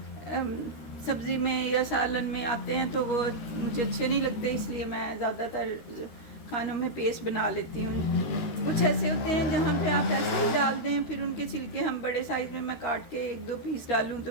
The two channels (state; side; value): late; right; 13 ms